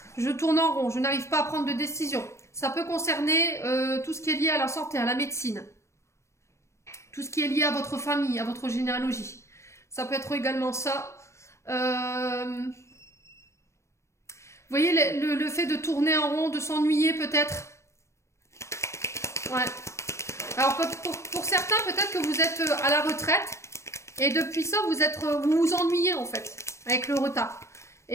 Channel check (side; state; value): right; late; 0.14 ms